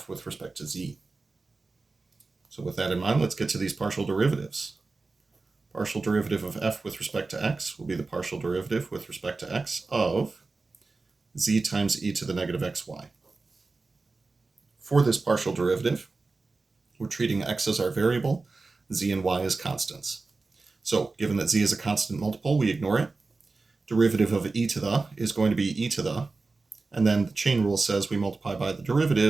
with respect to z. So with that in mind, let's get to these partial derivatives. Partial derivative of f with respect to x will be the partial derivative with respect to x of z times e to the negative xy. For this partial derivative, we're treating x as our variable, z and y as constants. So given that z is a constant multiple, we ignore it. Derivative of e to the is going to be e to the, and then the chain rule says we multiply by the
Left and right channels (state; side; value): quieter; left; 3.8 dB